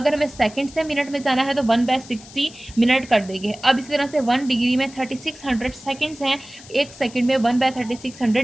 हमें सेकंड से मिनट में जाना है तो 1/60 मिनट कर देंगे। अब इसी तरह से 1 डिग्री में 3600 सेकंड्स हैं, 1 सेकंड में 1/3600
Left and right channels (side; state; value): left; noise; hiss, 19 dB below the sound